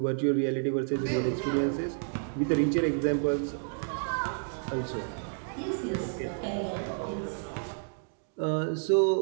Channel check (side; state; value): left; silent; digital silence